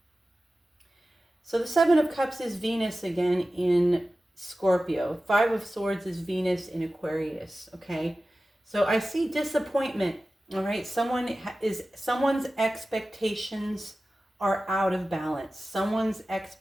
So the Seven of Cups is Venus again in Scorpio. Five of Swords is Venus in Aquarius, okay? So I see disappointment, all right? Someone's expectations are out of balance. Someone's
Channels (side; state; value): both; normal; correlation 0.95